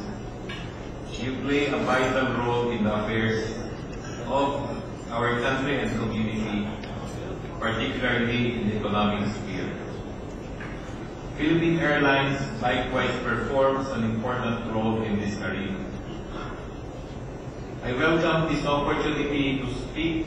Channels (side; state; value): both; identical; correlation 1.00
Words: you play a vital role in the affairs of our country and community, particularly in the economic sphere. Philippine Airlines likewise performs an important role in this arena. I welcome this opportunity to speak